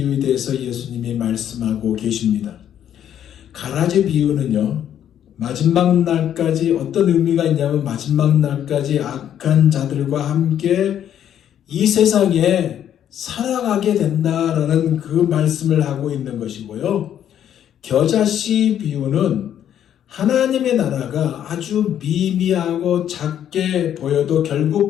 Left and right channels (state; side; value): quieter; right; 10.1 dB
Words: 대해서 예수님이 말씀하고 계십니다. 가라지 비유는요, 마지막 날까지 어떤 의미가 있냐면 마지막 날까지 악한 자들과 함께 이 세상에 살아가게 된다라는 그 말씀을 하고 있는 것이고요. 겨자씨 비유는 하나님의 나라가 아주 미미하고 작게 보여도 결국